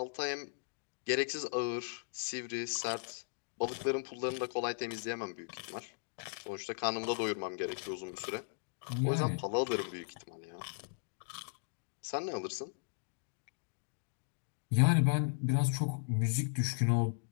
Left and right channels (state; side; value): silent; right; digital silence